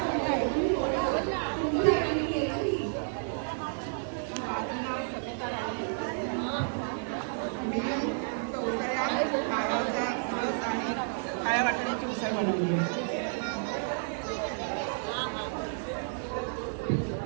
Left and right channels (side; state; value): left; silent; digital silence